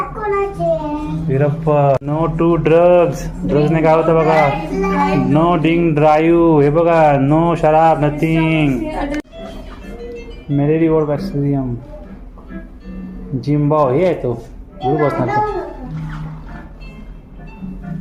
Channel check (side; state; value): both; identical; correlation 1.00